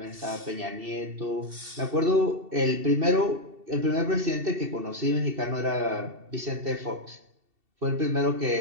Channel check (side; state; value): left; late; 2.7 ms